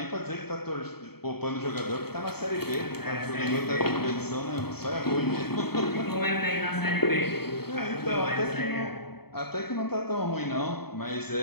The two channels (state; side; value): late; right; 0.96 ms